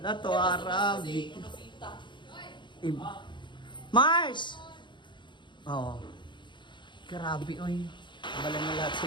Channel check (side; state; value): right; late; 0.23 ms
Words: to, Arabic. Mars! Oh. Grabe, oy. Bala na lahat